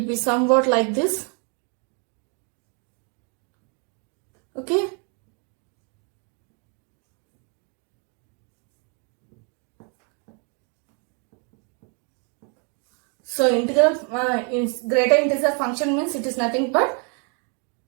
be somewhat like this. Okay. So integral greater integer function means it is nothing but,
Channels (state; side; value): quieter; left; 38.1 dB